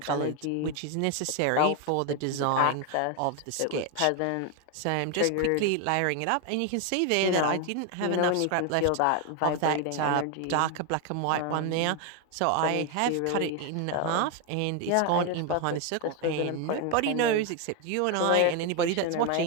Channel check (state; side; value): different; both; correlation 0.01